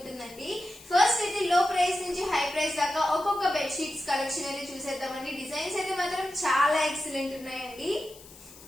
ఫస్ట్ అయితే లో ప్రైస్ నుంచి హై ప్రైస్ దాకా ఒక్కొక్క బెడ్ షీట్స్ కలెక్షన్ అయితే చూసేద్దామండి. డిజైన్స్ అయితే మాత్రం చాలా ఎక్సలెంట్ ఉన్నాయండి.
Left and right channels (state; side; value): noise; left; hiss, 20 dB below the sound